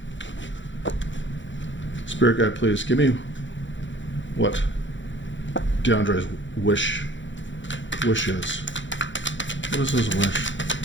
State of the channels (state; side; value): late; right; 0.54 ms